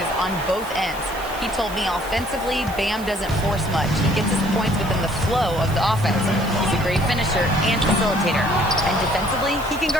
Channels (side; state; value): right; noise; hiss, 17 dB below the sound